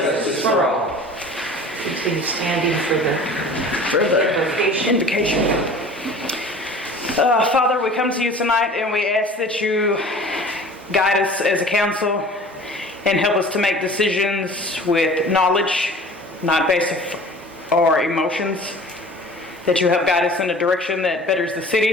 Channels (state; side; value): normal; both; correlation 0.44